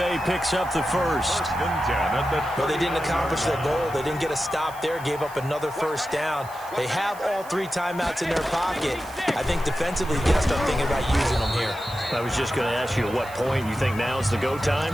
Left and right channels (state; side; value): noise; right; hiss, 20 dB below the sound